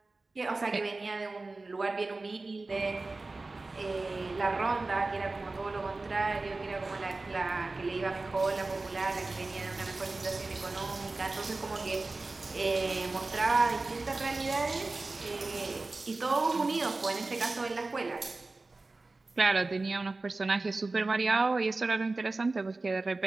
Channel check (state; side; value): quieter; left; 3.4 dB